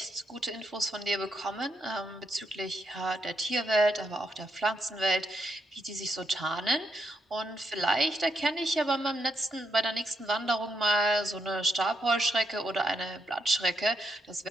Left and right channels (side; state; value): both; normal; correlation 0.80